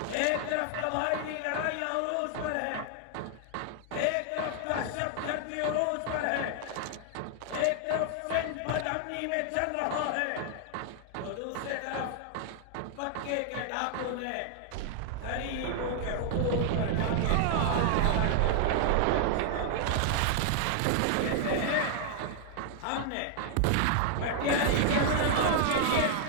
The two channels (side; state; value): both; different; correlation 0.00